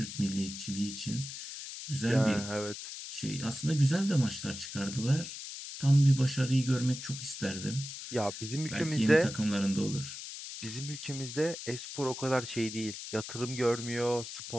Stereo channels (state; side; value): noise; left; hiss, 9 dB below the sound